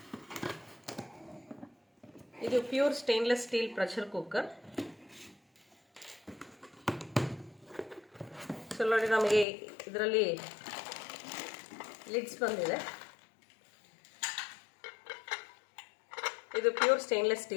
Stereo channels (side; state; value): right; drops out; at 9.5 s